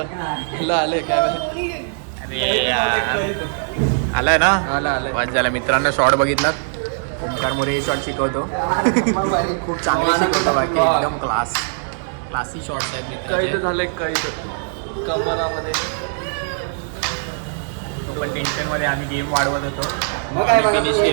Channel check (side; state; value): left; silent; digital silence